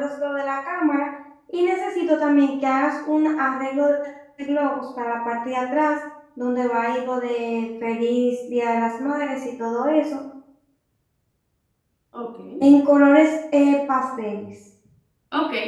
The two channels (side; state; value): both; identical; correlation 1.00